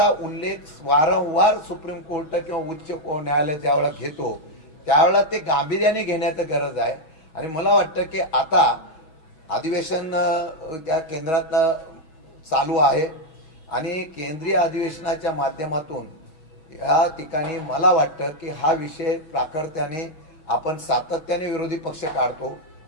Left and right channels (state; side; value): late; right; 6.3 ms